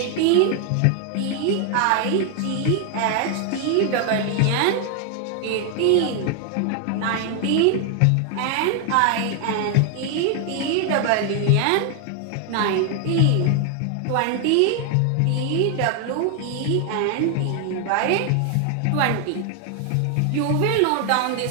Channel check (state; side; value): different; both; correlation 0.00